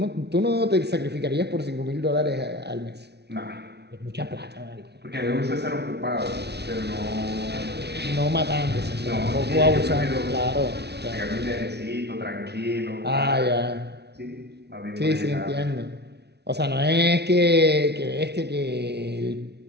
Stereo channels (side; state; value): left; late; 0.49 ms